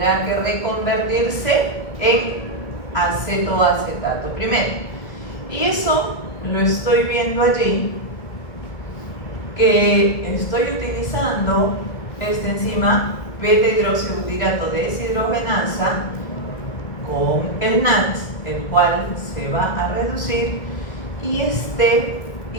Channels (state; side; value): late; right; 1.7 ms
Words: que reconvertirse en acetoacetato primero. Y eso lo estoy viendo allí, que estoy utilizando esta enzima beta-hidroxibutirato deshidrogenasa con el NAT, el cual se va a reducir, y este